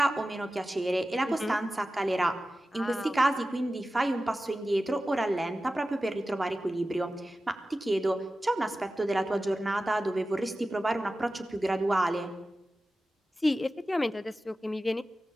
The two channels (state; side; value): normal; both; correlation 0.94